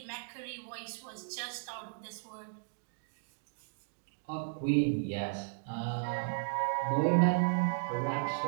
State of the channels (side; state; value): left; silent; digital silence